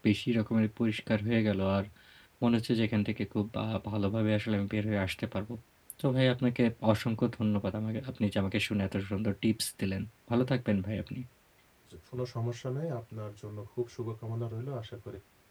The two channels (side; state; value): both; identical; correlation 1.00